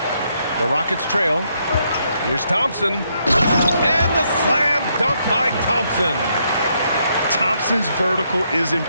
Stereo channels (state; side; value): inverted; both; correlation -0.75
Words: The Rockets trail. Here's Thompson. And the slam dunk by Thompson. Thompson's vertical is